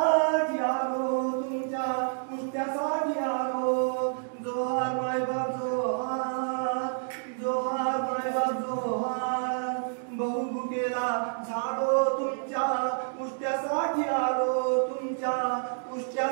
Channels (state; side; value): silent; left; 59 dB below the other